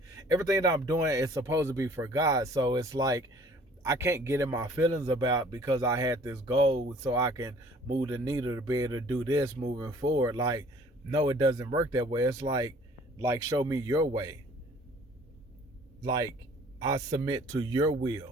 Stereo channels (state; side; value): normal; both; correlation 0.53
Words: everything that I'm doing is supposed to be for God. So it's like, I can't get in my feelings about, because I had this goal so I can move the needle to be able to do this moving forward. Like, no, it doesn't work that way. It's like show me your way. Like, I submit to your